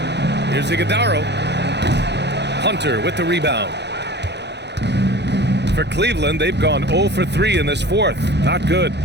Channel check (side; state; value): left; late; 0.50 ms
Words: Here's Iguodaro. Hunter with the rebound. For Cleveland, they've gone 0 for 3 in this fourth. Not good.